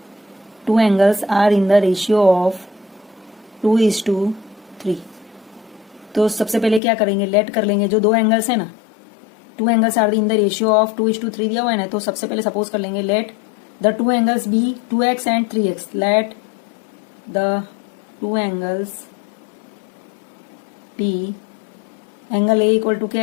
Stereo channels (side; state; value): right; drops out; at 6.8 s